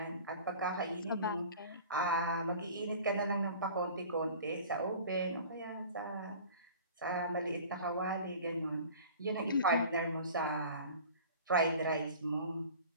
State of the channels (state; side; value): inverted; both; correlation -0.42